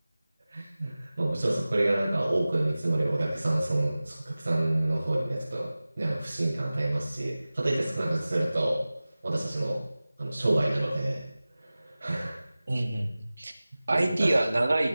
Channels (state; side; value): inverted; both; correlation -0.97